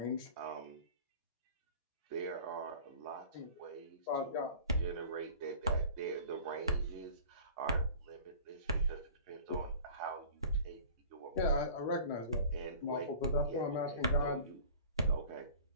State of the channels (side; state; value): both; inverted; correlation -0.44